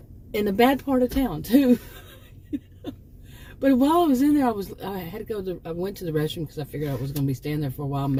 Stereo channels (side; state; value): both; identical; correlation 1.00